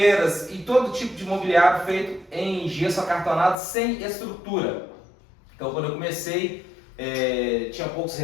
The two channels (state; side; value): drops out; right; at 3.6 s